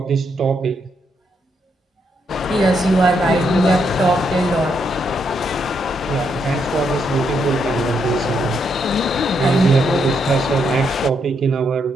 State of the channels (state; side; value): normal; both; correlation 0.77